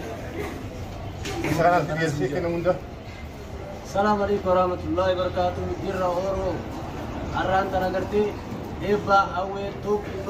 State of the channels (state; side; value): identical; both; correlation 1.00